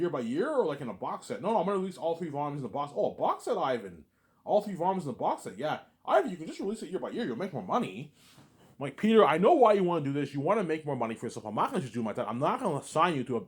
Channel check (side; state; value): both; identical; correlation 1.00